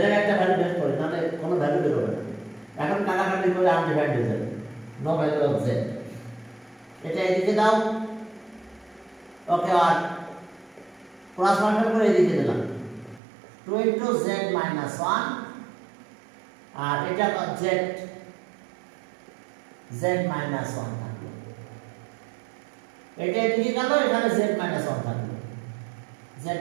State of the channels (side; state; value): left; drops out; at 13.2 s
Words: এর একটা ভ্যালু বের করি, নাহলে কোনো ভ্যালু বের হবে না, এখন কাটাকাটি করে আনডিফাইন্ড হয়ে যাবে, নো ভ্যালু অফ z, এটা এদিকে দাও, ওকে, আর ক্রস মাল্টিপ্লাই করে এদিকে দিলাম 2 into z minus 1, আর এটা z minus 1 থাকলো, এটা এদিকে গেল, এখানে z minus 1 থাকলো, z